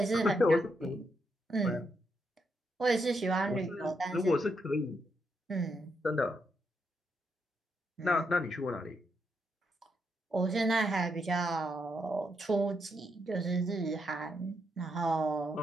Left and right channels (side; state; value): both; normal; correlation 0.80